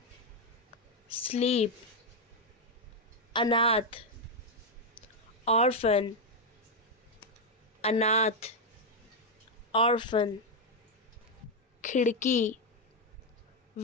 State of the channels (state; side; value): normal; both; correlation 0.02